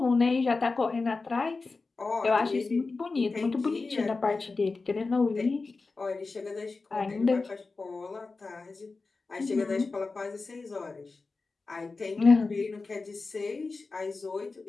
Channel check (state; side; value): quieter; right; 3.9 dB